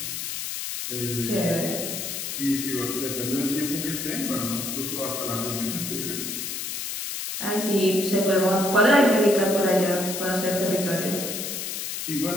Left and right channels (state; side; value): noise; left; hiss, 4 dB below the sound